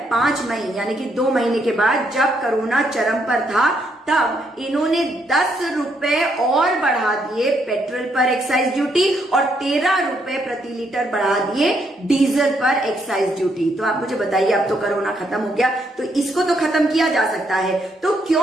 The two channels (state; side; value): normal; both; correlation 0.74